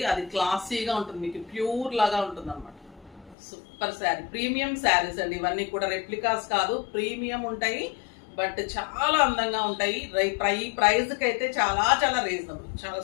అది క్లాసీగా ఉంటుంది, మీకు ప్యూర్ లాగా ఉంటుంది అనమాట. సూపర్ శారీ, ప్రీమియం శారీస్ అండి ఇవన్నీ కూడా. రెప్లికాస్ కాదు, ప్రీమియం ఉంటాయి, బట్ చాలా అందంగా ఉంటాయి. ప్రైస్కి అయితే చాలా చాలా రీజనబుల్, చాలా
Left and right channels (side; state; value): right; drops out; at 3.4 s